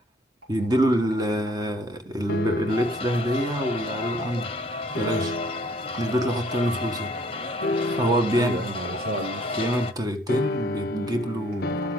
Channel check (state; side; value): normal; both; correlation 0.61